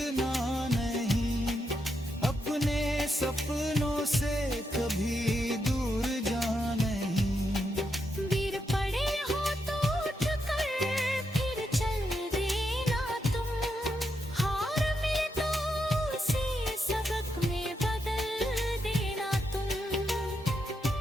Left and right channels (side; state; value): both; normal; correlation 0.82